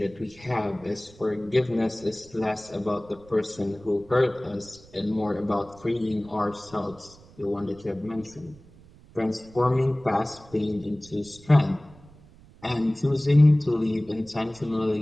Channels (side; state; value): right; noise; rumble, 24 dB below the sound